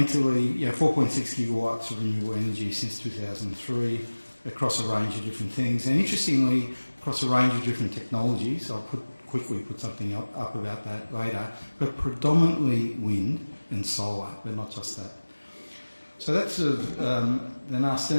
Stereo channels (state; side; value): inverted; both; correlation -1.00